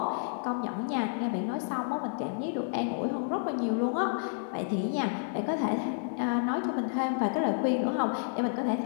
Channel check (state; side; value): silent; right; digital silence